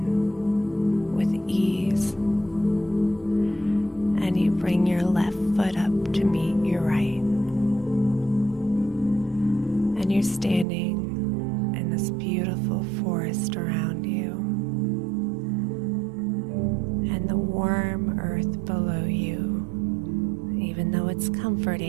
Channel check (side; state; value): left; drops out; at 10.7 s